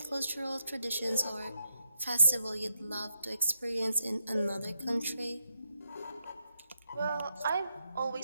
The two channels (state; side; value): inverted; both; correlation -0.82